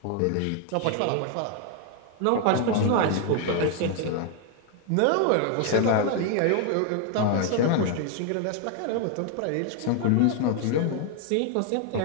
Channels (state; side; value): different; both; correlation 0.00